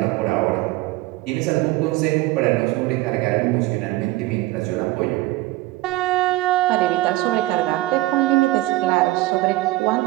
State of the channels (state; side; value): quieter; left; 18.1 dB